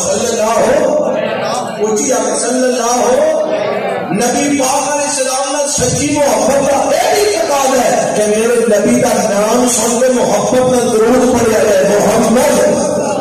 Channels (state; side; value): identical; both; correlation 1.00